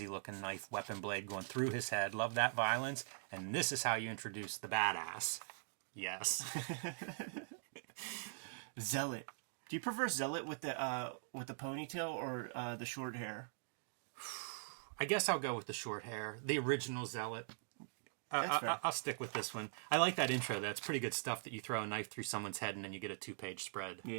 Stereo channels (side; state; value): left; silent; digital silence